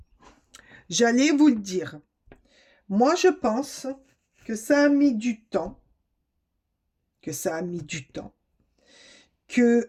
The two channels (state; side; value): identical; both; correlation 1.00